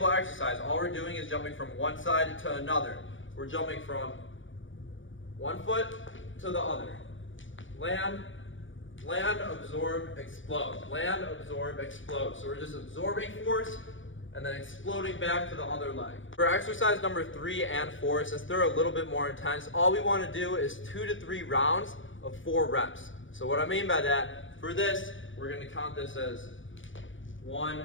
exercise. All we're doing is jumping from one side to another. We're jumping from 1 foot to the other. Land, land, absorb, explode. Land, absorb, explode. So we're just absorbing force and then exploding back to the other leg. For exercise number 3 and 4, since they're a little bit more intense, all we want to do is 2 to 3 rounds of 4 reps. So what I mean by that, for this, we're going to count this as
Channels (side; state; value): right; late; 0.56 ms